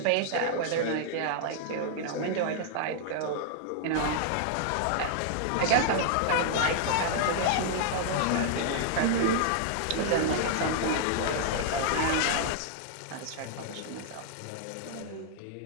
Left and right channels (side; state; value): both; different; correlation -0.01